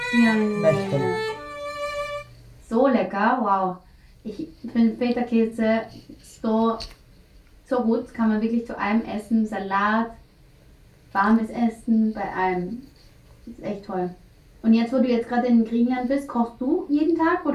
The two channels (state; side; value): identical; both; correlation 1.00